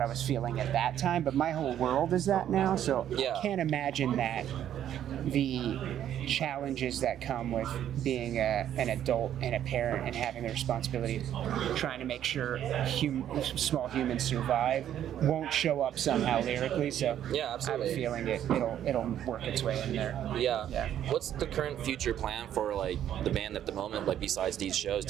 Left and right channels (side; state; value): left; quieter; 10.7 dB